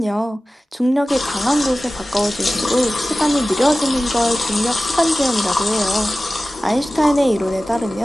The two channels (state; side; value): normal; both; correlation 0.96